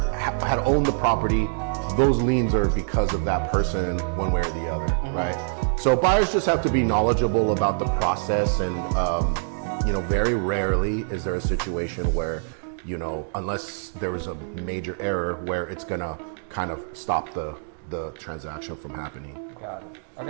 had owned the property. Those liens are because of that person one way or the other, right? So buyers just have to be knowledgeable about the process, and you know, very rarely is there a situation where, you know, unless there was a major error, where it's gonna kind of stop the transaction from happening. Got it.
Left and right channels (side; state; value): left; silent; digital silence